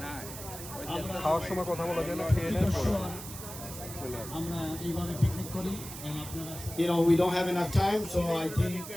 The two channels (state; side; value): noise; right; hiss, 11 dB below the sound